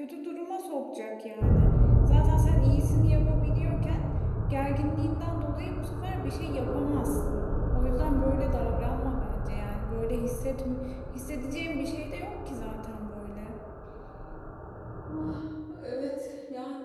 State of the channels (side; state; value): both; identical; correlation 1.00